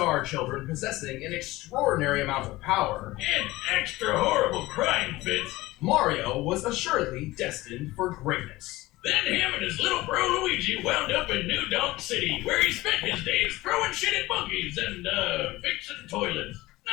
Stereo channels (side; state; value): right; quieter; 18.9 dB